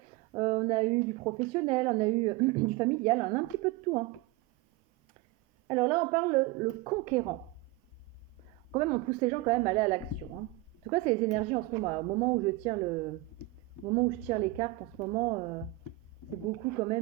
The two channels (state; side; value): quieter; left; 18.7 dB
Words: on a eu du professionnel, on a eu du familial, on a un petit peu de tout, hein. Alors là, on parle le conquérant. Quand même, on pousse les gens quand même à aller à l'action, hein. En tout cas, c'est les énergies en ce moment. Au moment où je tire au moment où je tire les cartes, en ce moment, c'est beaucoup quand